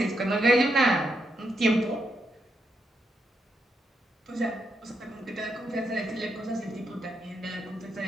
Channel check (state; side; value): normal; both; correlation 0.81